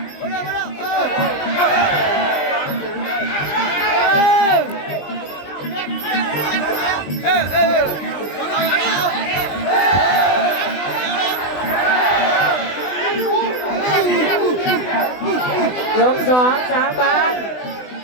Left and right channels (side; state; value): right; late; 20 ms